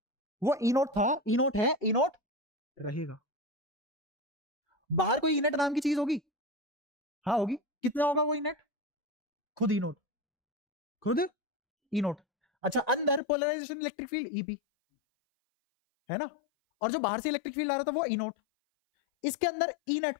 वो ई नोट था, ई नोट है, ई नोट रहेगा। बाहर कोई ई नेट नाम की चीज होगी? हाँ होगी। कितना होगा वो ई नेट? खुद ई नोट, खुद ई नोट। अच्छा, अंदर पोलराइजेशन इलेक्ट्रिक फील्ड ईपी, है ना? और जो बाहर से इलेक्ट्रिक फील्ड आ रहा था वो ई नोट। इसके अंदर ई नेट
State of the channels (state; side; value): drops out; right; at 13.2 s